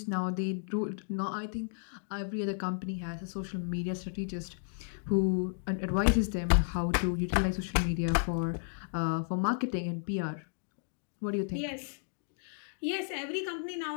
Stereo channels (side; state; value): right; silent; digital silence